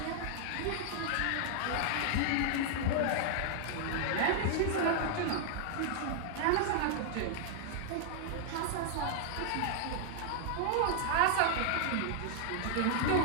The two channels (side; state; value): both; different; correlation 0.00